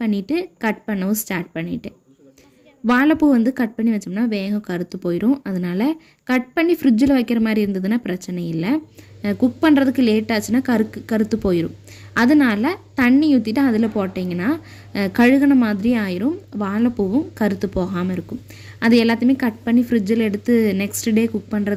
பண்ணிவிட்டு கட் பண்ணவும் ஸ்டார்ட் பண்ணிட்டேன். வாழைப்பூ வந்து கட் பண்ணி வச்சோம்னா வேகம் கருத்து போயிடும். அதனால் கட் பண்ணி ஃப்ரிட்ஜில் வைக்கிற மாதிரி இருந்ததுன்னா பிரச்சனை இல்லை. குக் பண்ணுறதுக்கு லேட் ஆச்சுன்னா கருத்து போயிடும். அதனால் தண்ணி ஊற்றிட்டு அதில் போட்டிங்கன்னா கழுகுன மாதிரி ஆயிரும், வாழைப்பூவும் கருத்து போகாமல் இருக்கும். அது எல்லாத்தையுமே கட் பண்ணி ஃப்ரிட்ஜில் எடுத்து நெக்ஸ்ட் டே குக்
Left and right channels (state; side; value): identical; both; correlation 1.00